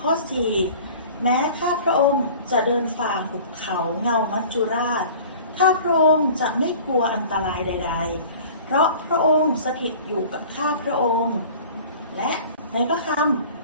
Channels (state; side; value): inverted; both; correlation -0.43